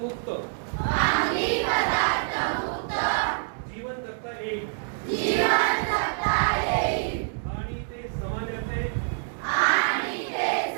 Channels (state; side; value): silent; left; digital silence